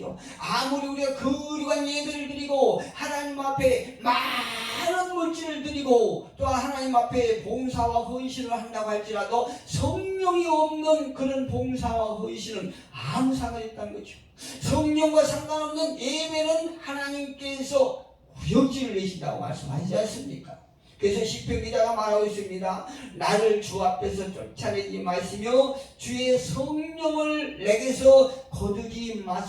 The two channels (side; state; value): both; identical; correlation 1.00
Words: 아무리 우리가 거룩한 예배를 드리고 하나님 앞에 많은 물질을 드리고 또 하나님 앞에 봉사와 헌신을 한다고 할지라도 성령이 없는 그런 봉사와 헌신은 아무 상관이 없다는 거죠. 성령과 상관없는 예배는 하나님께서 구역질을 내신다고 말씀하시지 않습니까? 그래서 시편 기자가 말하고 있습니다. 나를 주 앞에서 쫓아내지 마시며 주의 성령을 내게서 거두지